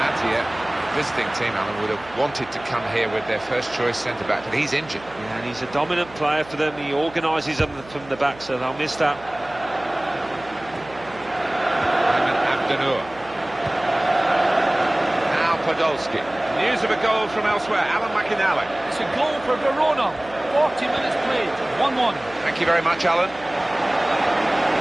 visiting team, Alan, would have wanted to come here with their first choice centre-back, but he's injured. Yeah, and he's a dominant player for them. He organises them from the back, so they'll miss that. Now Podolski. News of a goal from elsewhere. Alan McInally. It's a goal for Verona. 40 minutes played. 1-1. Thank you very much, Alan.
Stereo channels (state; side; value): noise; right; hum, 21 dB below the sound